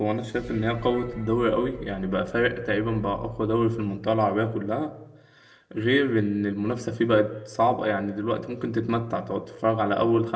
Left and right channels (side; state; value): both; identical; correlation 1.00